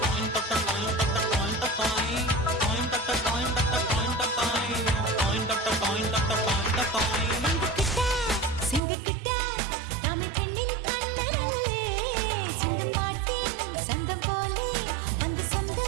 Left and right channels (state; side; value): drops out; left; at 8.8 s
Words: സിംഗക്കിട്ട രാമ പെണ്ണിൻ കണ്ണനല്ലേ സിംഗം പാട്ടി സ്വന്തം പോലെ വന്ന്